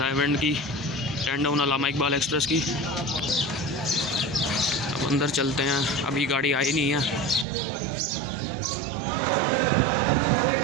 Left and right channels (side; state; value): left; drops out; at 7.5 s